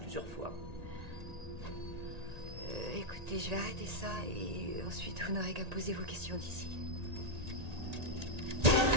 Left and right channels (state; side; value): late; left; 1.8 ms